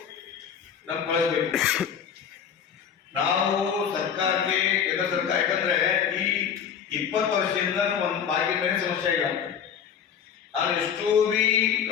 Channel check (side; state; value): right; quieter; 7.8 dB